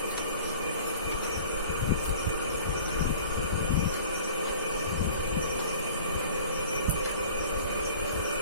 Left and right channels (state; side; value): inverted; both; correlation -0.46